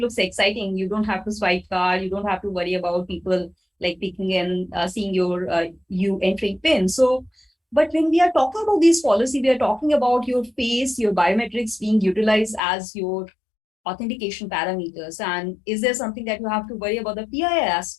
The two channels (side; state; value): right; drops out; at 12.6 s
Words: exciting. You don't have to swipe card. You don't have to worry about people like picking and seeing your you entering PIN. So, but when we are talking about these policy, we are talking about your face, your biometrics being utilized as your authentication parameters. And is there something that you have to worry about the PII